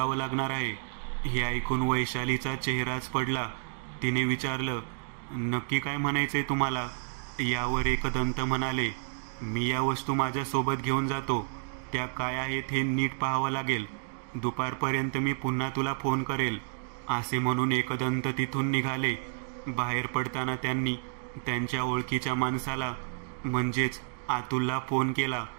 लागणार आहे. हे ऐकून वैशालीचा चेहराच पडला. तिने विचारलं, नक्की काय म्हणायचंय तुम्हाला? यावर एकदंत म्हणाले, मी या वस्तू माझ्यासोबत घेऊन जातो. त्या काय आहेत हे नीट पाहावं लागेल. दुपारपर्यंत मी पुन्हा तुला फोन करेल. असे म्हणून एकदंत तिथून निघाले. बाहेर पडताना त्यांनी त्यांच्या ओळखीच्या माणसाला म्हणजेच अतुलला फोन केला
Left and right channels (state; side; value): silent; left; digital silence